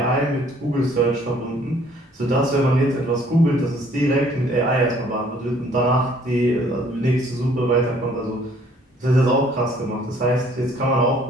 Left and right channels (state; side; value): normal; both; correlation 0.59